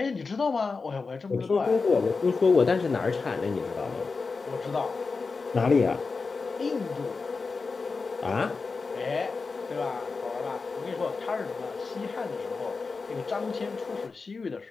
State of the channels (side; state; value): right; quieter; 4.4 dB